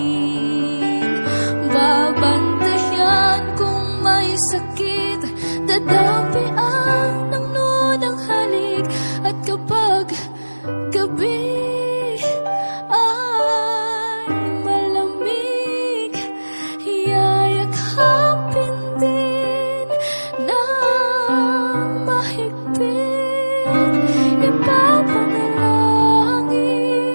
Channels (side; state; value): both; inverted; correlation -1.00